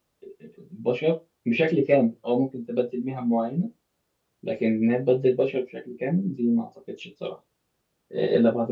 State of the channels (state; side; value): identical; both; correlation 1.00